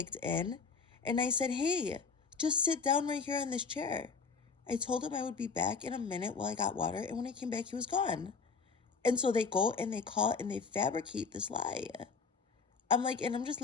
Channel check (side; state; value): right; quieter; 5.1 dB